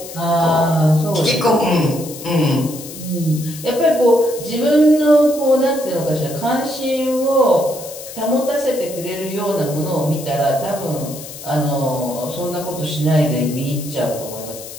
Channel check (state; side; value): noise; left; hiss, 13 dB below the sound